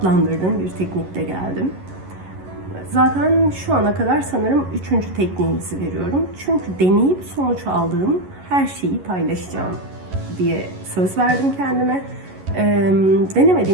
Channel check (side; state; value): left; late; 11 ms